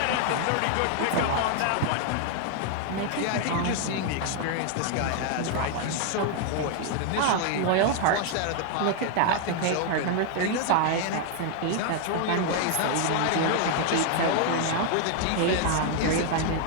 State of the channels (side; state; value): both; different; correlation 0.00